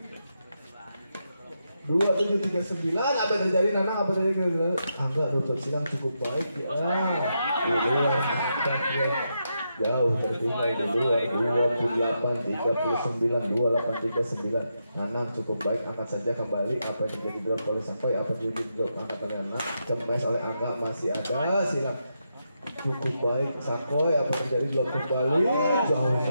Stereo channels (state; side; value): inverted; both; correlation -0.84